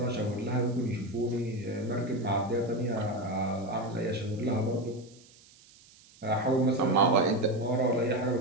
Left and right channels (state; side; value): noise; right; hiss, 26 dB below the sound